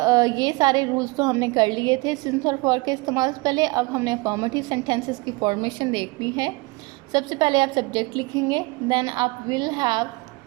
ये सारे रूल्स तो हमने कर लिए थे सिंस और फॉर के इस्तेमाल से पहले। अब हमने अफर्मेटिव सेंटेंसेस की फॉर्मेशन देखनी है। सबसे पहले आप सब्जेक्ट लिखेंगे, देन आप विल हैव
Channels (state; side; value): quieter; left; 25.9 dB